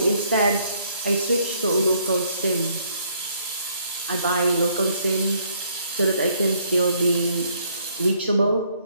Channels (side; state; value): both; inverted; correlation -0.67